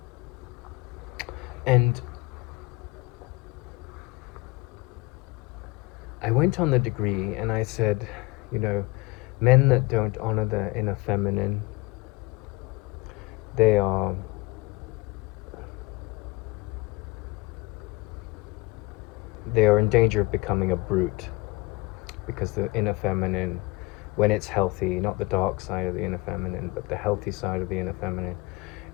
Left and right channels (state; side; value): quieter; right; 22.9 dB